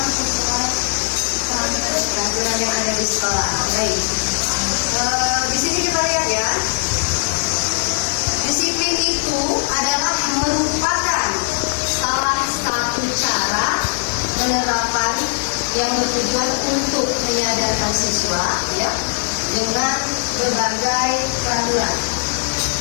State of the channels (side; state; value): right; silent; 63 dB below the other